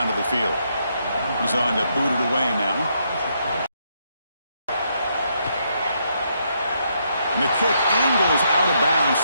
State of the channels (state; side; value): inverted; both; correlation -0.76